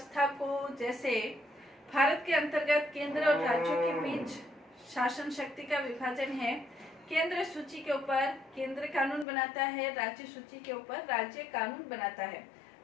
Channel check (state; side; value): drops out; right; at 9.2 s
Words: को जैसे भारत के अंतर्गत केंद्र और राज्यों के बीच शासन शक्ति का विभाजन है। केंद्र सूची के ऊपर केंद्र कानून बनाता है, राज्य सूची के ऊपर राज्य कानून बनाता है।